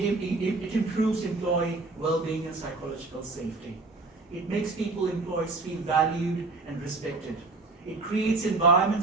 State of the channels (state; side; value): quieter; left; 3.5 dB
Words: improves employee well-being and psychological safety. It makes employees feel valued and respected. It creates